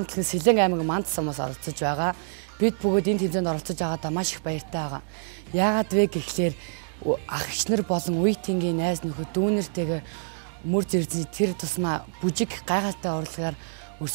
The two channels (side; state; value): left; silent; digital silence